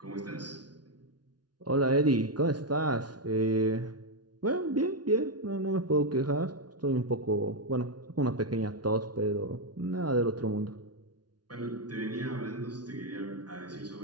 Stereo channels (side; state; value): left; late; 0.69 ms